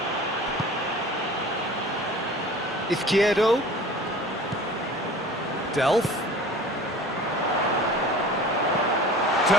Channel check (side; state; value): both; normal; correlation 0.42